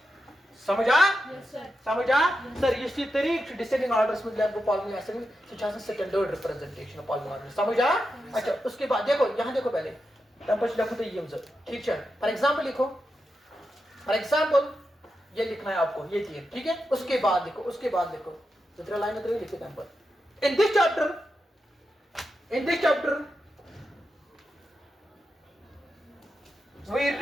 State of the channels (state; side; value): normal; both; correlation 0.88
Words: समझा सर इसी तरीके डिसेंडिंग ऑर्डर्स में आपको पॉलिनोमियल ऐसे स्टैंडर्ड रिप्रेजेंटेशन ऑफ पॉलिनोमियल समझा अच्छा उसके बाद देखो यहां देखो पहले तब कुछ लिखो तो ये ठीक है फॉर एग्जांपल ये लिखना है आपको ये चीज ठीक है उसके बाद देखो जितना लाइन में लिखे number in this chapter